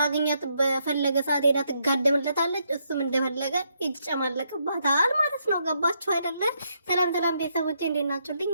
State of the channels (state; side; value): inverted; both; correlation -0.77